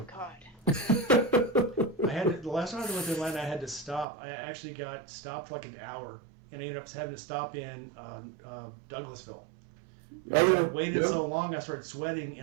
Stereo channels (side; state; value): left; drops out; at 4.0 s